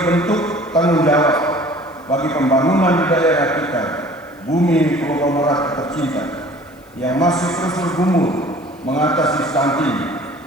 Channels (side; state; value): left; noise; hiss, 30 dB below the sound